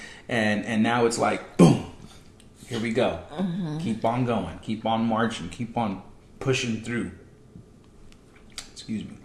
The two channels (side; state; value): both; identical; correlation 1.00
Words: and now it's like, boom, here we go. Mm-hmm. Keep on going. Keep on marching. Keep on pushing through. Excuse me.